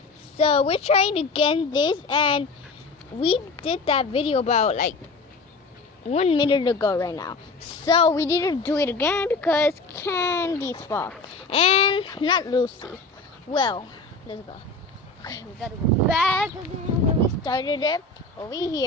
So we're trying again this, and we did that video about like 1 minute ago right now. So we need to do it again because Candy's fault and not Lucy. Well, let's go. Okay, we gotta go back again where we started it over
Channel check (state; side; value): quieter; right; 3.6 dB